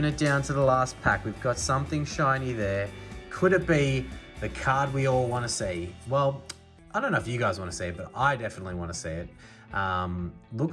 it down to the last pack. We've got something shiny there. Could it be the card we all want to see? Well, I don't know if you guys want to see it, but I definitely want to see it.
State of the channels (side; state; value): both; identical; correlation 1.00